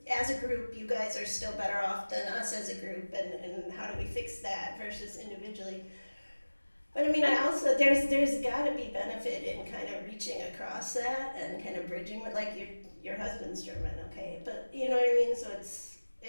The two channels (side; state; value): both; inverted; correlation -1.00